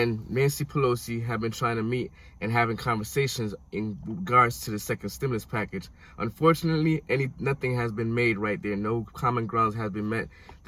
Nancy Pelosi have been trying to meet and having conversations in regards to the second stimulus package. Unfortunately, nothing has been made right there. No common grounds has been met.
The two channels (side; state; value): both; identical; correlation 1.00